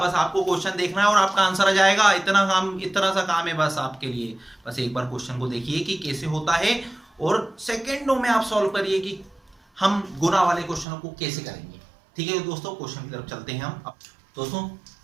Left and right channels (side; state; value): left; drops out; at 10.9 s